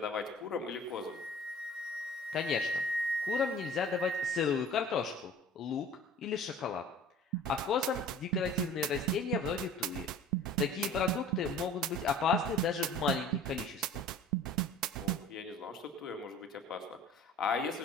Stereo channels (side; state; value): both; normal; correlation 0.45